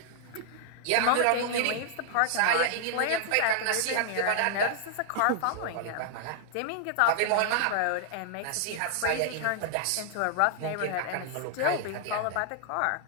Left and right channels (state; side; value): different; both; correlation 0.00